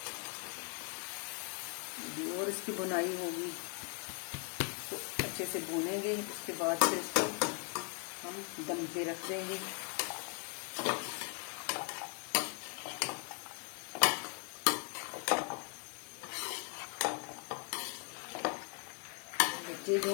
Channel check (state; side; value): quieter; right; 35.4 dB